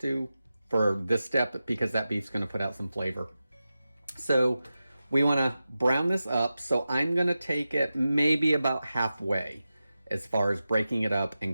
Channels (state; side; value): inverted; both; correlation -0.93